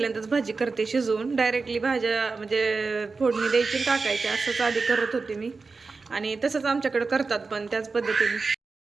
भाजी करते शिजवून. डायरेक्टली भाज्या म्हणजे फोडणी द्यायची टाकायची असंच आधी करत होते मी, आणि तसंच आमच्याकडे करतात पण त्याच पद्धतीने.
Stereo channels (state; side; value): quieter; left; 4.2 dB